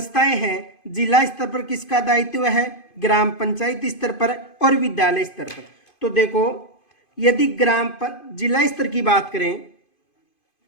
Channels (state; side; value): late; right; 2.5 ms